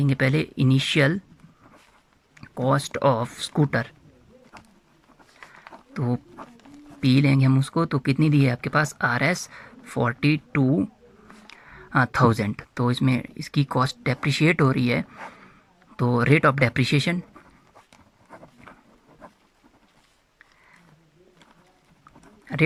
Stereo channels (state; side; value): identical; both; correlation 1.00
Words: पहले इनिशियल कॉस्ट ऑफ स्कूटर, तो पी लेंगे हम उसको, तो कितनी दी है आपके पास Rs 42,000। तो इसमें इसकी कॉस्ट डेप्रिशिएट हो रही है, तो रेट ऑफ डेप्रिशिएशन